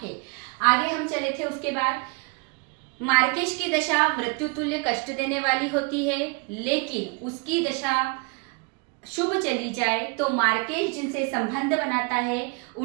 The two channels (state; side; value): quieter; left; 31.7 dB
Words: है। आगे हम चले थे, उसके बाद मार्केश की दशा मृत्यु तुल्य कष्ट देने वाली होती है, लेकिन उसकी दशा शुभ चली जाए तो मार्केश जिनसे संबंध बनाता है